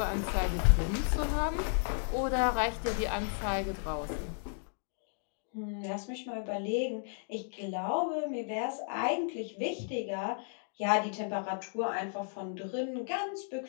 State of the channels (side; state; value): right; silent; digital silence